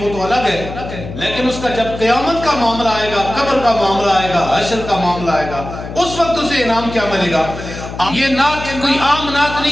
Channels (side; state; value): left; noise; hum, 10 dB below the sound